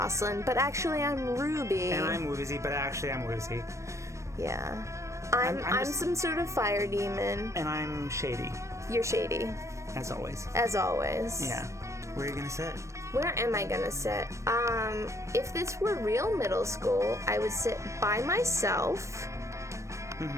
But actually I'm Ruby. And I'm Woozy, but actually I'm Woozy. Yeah. I'm some sort of fire demon. And I'm Shady. You're Shady. As always. As always. Yeah. Where are you gonna sit? Where am I gonna sit? If this were real middle school, I would sit by myself,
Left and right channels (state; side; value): late; left; 0.15 ms